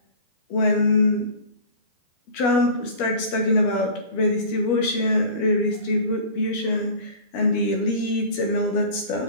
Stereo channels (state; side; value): late; right; 12 ms